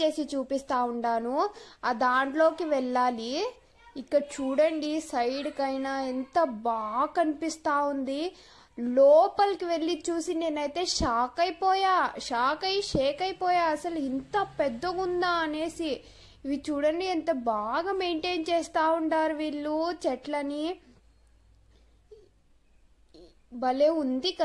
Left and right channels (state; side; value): identical; both; correlation 1.00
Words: చూపిస్తా ఉండాను. ఆ దాంట్లోకి వెళ్ళాలి. ఇక్కడ చూడండి సైడ్ కైనా ఎంత బాగా కనిపిస్తా ఉంది. లోపలికి వెళ్ళి చూసి నేనైతే షేక్ అయిపోయా. అసలు ఇంత పెద్దగుందా అనేసి. ఇవి చూడండి ఎంత బాగా మెయింటైన్ చేస్తా ఉంటారు వీళ్ళు చెట్లని. భలే ఉంది